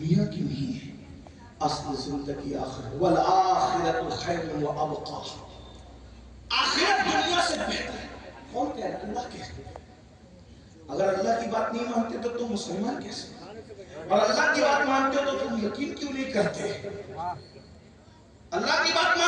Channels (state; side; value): identical; both; correlation 1.00